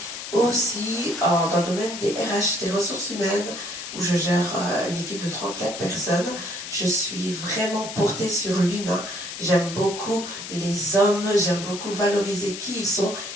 aussi dans le domaine des RH, des ressources humaines, où je gère une équipe de 34 personnes. Je suis vraiment portée sur l'humain. J'aime beaucoup les hommes, j'aime beaucoup valoriser qui ils sont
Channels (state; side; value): noise; left; hiss, 9 dB below the sound